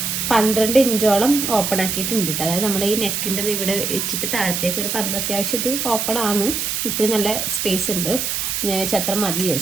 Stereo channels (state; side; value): noise; right; hiss, 1 dB below the sound